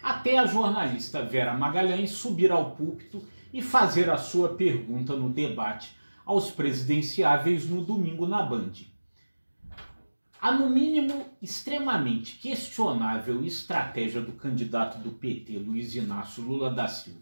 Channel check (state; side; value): inverted; both; correlation -1.00